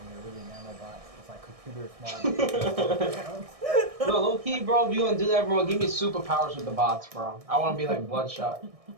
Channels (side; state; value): left; late; 1.6 ms